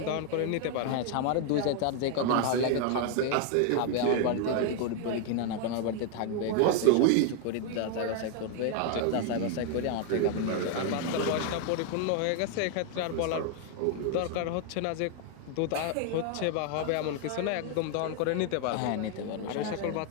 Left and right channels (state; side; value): different; both; correlation 0.00